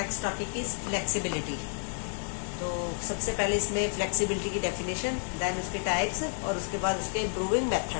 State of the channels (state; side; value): silent; right; digital silence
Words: topic is flexibility. तो सबसे पहले इसमें फ्लेक्सिबिलिटी की डेफिनेशन, देन उसके टाइप्स और उसके बाद उसके इम्प्रूविंग